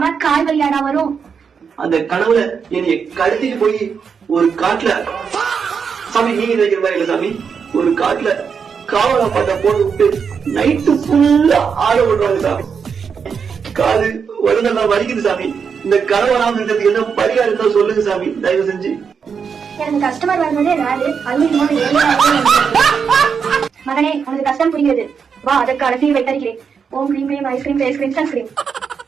கால் வழியாடா வரும். அந்த கனவுல என்னைய கடத்திட்டு போய் ஒரு காட்டுல, சாமி நீங்க நினைக்கிற மாதிரி இல்ல சாமி, ஒரு காட்டுல காவலா பாட்டா போட்டு விட்டு நைட்டு ஃபுல்லா ஆட விடுறாங்க சாமி. காது உடனெல்லாம் வலிக்குது சாமி. இந்த கனவு வராம இருக்கிறதுக்கு என்ன பரிகாரம் இருந்தா சொல்லுங்க சாமி, தயவு செஞ்சு. எனக்கு கஸ்டமர் வருவதே ராது. மகனே, உனக்கு கஷ்டம் புரிகிறது. வா, அதற்கான தீர்வை தருகிறேன். ஓம் கிரீம் கிரீம் ஐஸ்கிரீம் ஃபேஸ்கிரீம் சன்ஸ்கிரீம்.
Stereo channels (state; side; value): quieter; left; 6.3 dB